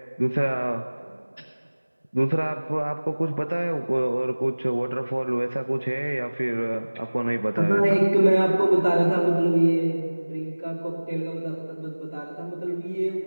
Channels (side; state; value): both; inverted; correlation -1.00